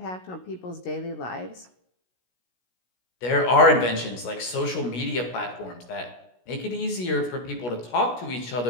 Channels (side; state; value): right; late; 16 ms